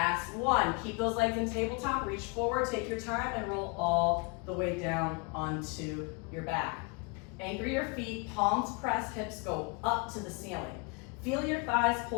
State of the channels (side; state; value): right; quieter; 31.7 dB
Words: 1. Keep those legs in tabletop, reach forward, take your time, and roll all the way down onto your back. Anchor your feet, palms press, hips go up to the ceiling. Feel your thighs